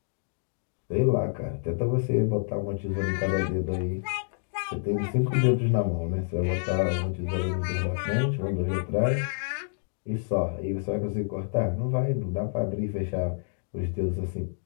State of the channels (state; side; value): silent; right; digital silence